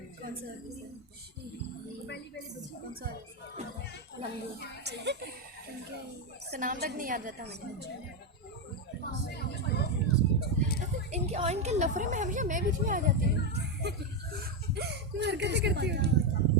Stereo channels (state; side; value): normal; both; correlation 0.07